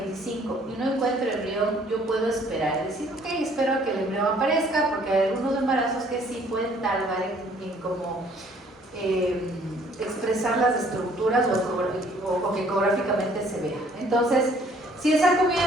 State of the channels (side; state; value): both; normal; correlation 0.60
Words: y no encuentro embrión, yo puedo esperar. Es decir, ok, espero a que el embrión aparezca, porque hay algunos embarazos que sí pueden tardar en como expresar las estructuras o que ecográficamente se vea. Entonces, si el saco mide